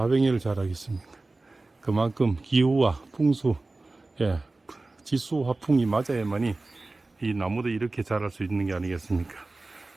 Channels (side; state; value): left; quieter; 3.2 dB